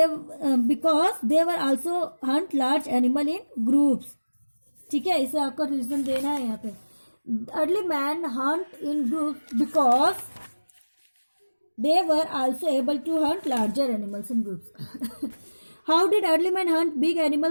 they were also Hunt large animal in groups. ठीक है, इसे आपको रीजन देना है यहाँ पे। Early man hunt in groups because they were also able to hunt larger animals in groups. How did early man hunt big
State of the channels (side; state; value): both; inverted; correlation -1.00